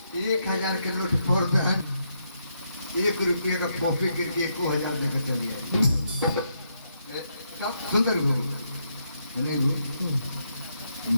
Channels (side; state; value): both; inverted; correlation -0.78